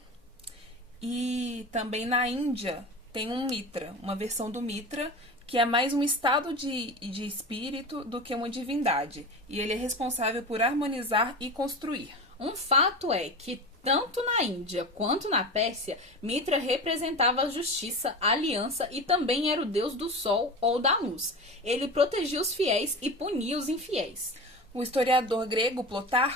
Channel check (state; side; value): normal; both; correlation 0.29